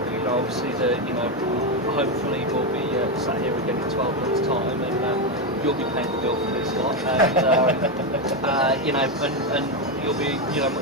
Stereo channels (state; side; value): normal; both; correlation 0.08